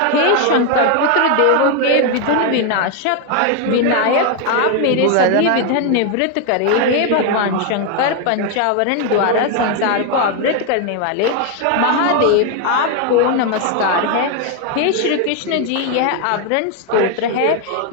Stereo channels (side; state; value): both; different; correlation 0.01